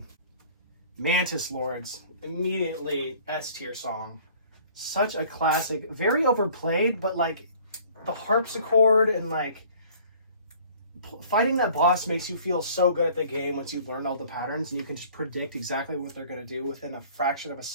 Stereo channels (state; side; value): inverted; both; correlation -0.52